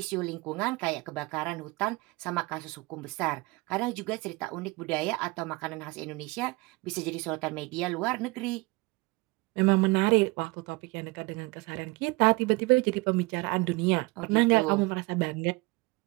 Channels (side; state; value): left; quieter; 24.2 dB